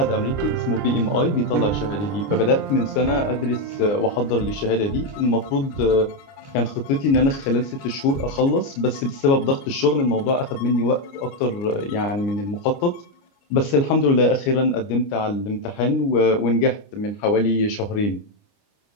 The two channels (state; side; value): late; right; 29 ms